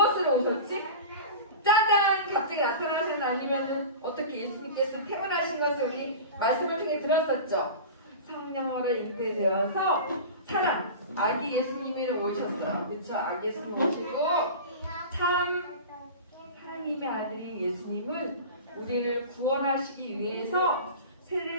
오셨지? 짜잔! 갑자기 나타나셨나? 아니면 어떻게 예수님께서 태어나신 것을 우리 말씀을 통해 들었었죠. 성령으로 잉태되어서 사람, 아기 예수님이 오셨어요. 그렇죠? 아기 예수님 오시고 참 하나님의 아들인 예수님은 우리를 구원하시기 위해서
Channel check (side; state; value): both; inverted; correlation -0.32